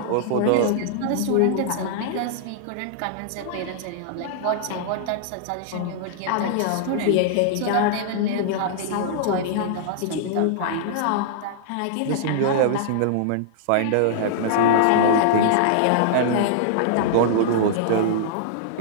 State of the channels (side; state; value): both; different; correlation -0.01